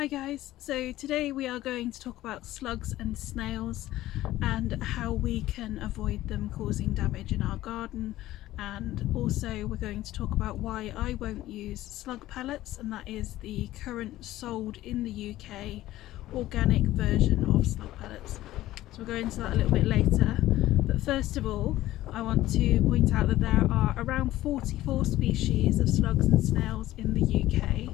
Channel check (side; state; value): right; quieter; 15.3 dB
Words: guys, so today we are going to talk about slugs and snails and how we can avoid them causing damage in our garden, and also we're going to talk about why I won't use slug pellets, and that is the current sold in the UK organic version of slug pellets. So we'll go into that a little bit later, but first of all I want to point out that there are around 44 species of slugs and snails in the